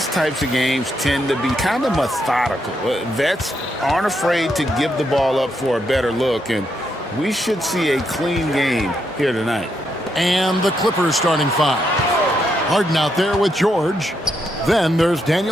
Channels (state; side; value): normal; both; correlation 0.79